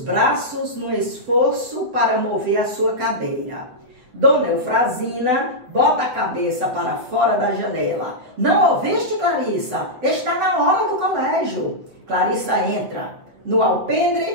braços no esforço para mover a sua cadeira. Dona Eufrazina bota a cabeça para fora da janela. Não ouviste, Clarissa? Está na hora do colégio. Clarissa entra. No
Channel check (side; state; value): left; late; 8.3 ms